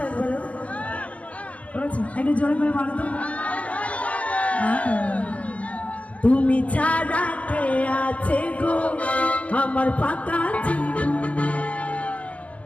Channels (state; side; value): late; right; 0.066 ms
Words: একবার করেছো একটু জোরে করে বলো তো তুমি ছাড়া কে আছে গো আমার পাকা জীবন